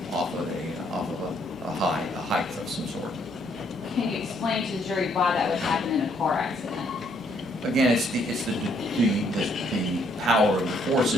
off of a height of some sort. Can you explain to the jury why that would happen in a car accident? Again, it's the power of the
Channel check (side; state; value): right; noise; hum, 28 dB below the sound